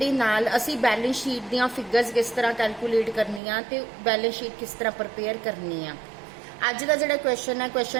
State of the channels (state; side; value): drops out; left; at 3.4 s